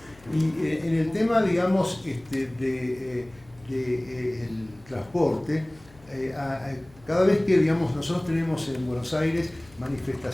Y en el tema, digamos, el transporte, cada vez que, digamos, nosotros tenemos en Buenos Aires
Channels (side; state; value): left; noise; hum, 25 dB below the sound